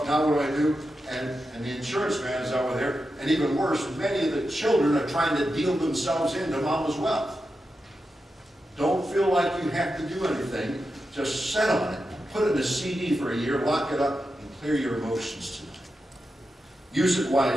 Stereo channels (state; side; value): normal; both; correlation 0.89